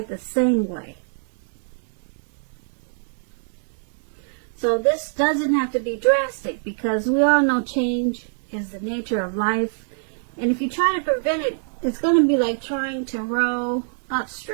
the same way. So this doesn't have to be drastic, because we all know change is the nature of life. And if you try to prevent it, it's going to be like trying to row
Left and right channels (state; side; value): silent; left; digital silence